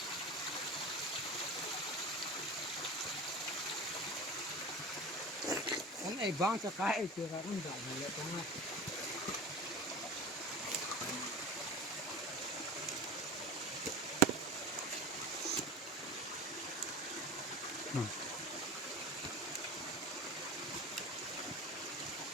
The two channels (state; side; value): normal; both; correlation 0.33